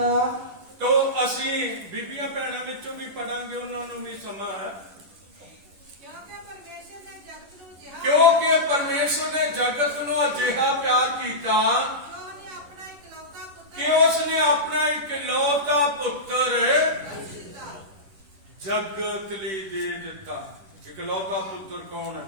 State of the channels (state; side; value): late; left; 10 ms